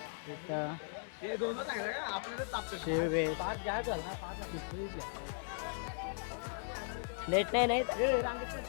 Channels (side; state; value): right; silent; 53 dB below the other